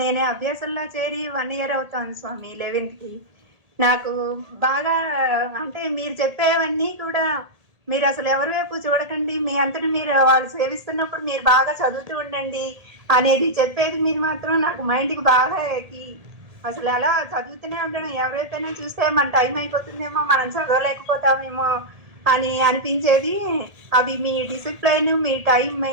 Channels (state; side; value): late; left; 1.8 ms